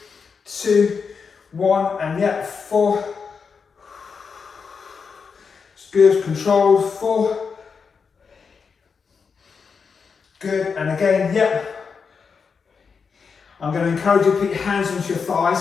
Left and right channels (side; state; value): right; quieter; 5.6 dB